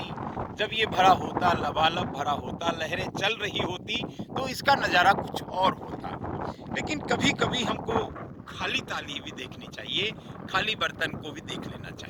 जब ये भरा होता, लबालब भरा होता, लहरें चल रही होती, तो इसका नज़ारा कुछ और होता। लेकिन कभी-कभी हमको खाली थाली भी देखनी चाहिए, खाली बर्तन को भी देख लेना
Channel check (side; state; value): both; identical; correlation 1.00